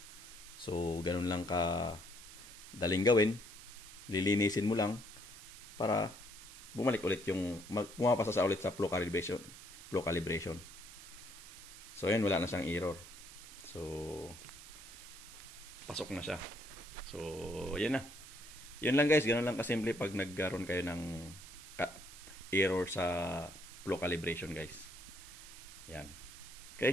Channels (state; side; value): noise; right; hiss, 15 dB below the sound